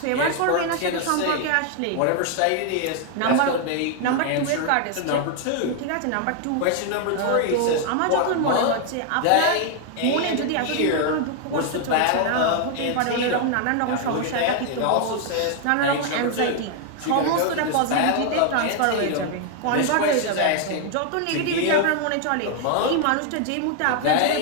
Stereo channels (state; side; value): different; both; correlation 0.00